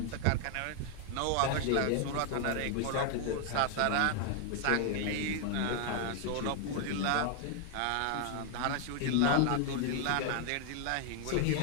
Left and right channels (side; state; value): both; different; correlation 0.00